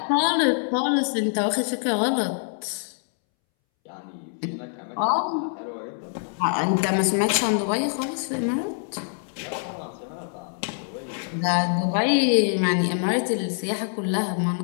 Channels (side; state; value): right; silent; 62 dB below the other